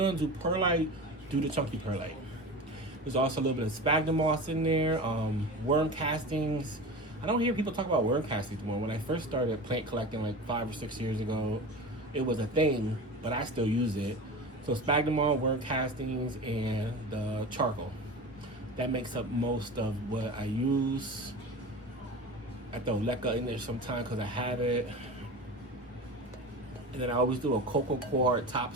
do perlite, do the chunky perlite. There's also a little bit of sphagnum moss in there, worm castings. I don't hear people talk about worm castings more. When I first started plant collecting like 5 or 6 years ago, it was a thing, but I still use it. So sphagnum moss, worm castings, and the charcoal. That makes up most of what I use. I throw leca in there sometimes because I have it. And then I always do a cocoa coir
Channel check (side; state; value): both; normal; correlation 0.31